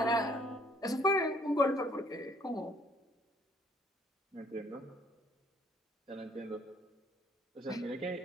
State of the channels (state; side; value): normal; both; correlation 0.62